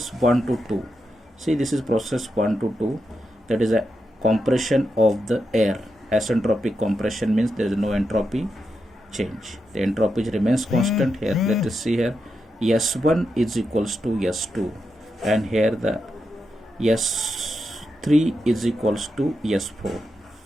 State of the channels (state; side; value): normal; both; correlation 0.86